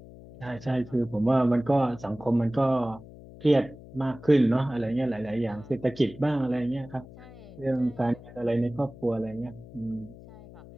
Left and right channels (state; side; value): noise; left; hum, 18 dB below the sound